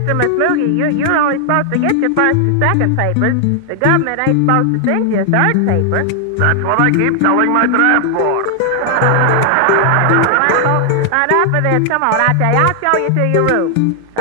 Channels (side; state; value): both; different; correlation 0.00